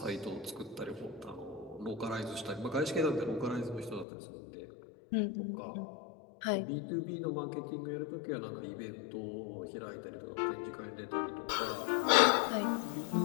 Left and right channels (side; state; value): right; drops out; at 4.0 s